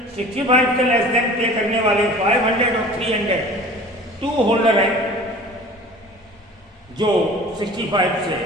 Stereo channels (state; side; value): normal; both; correlation 0.43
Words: 65 से लेस देन पे करने वाले 500 और 300 2 होल्डर हैं जो 65 से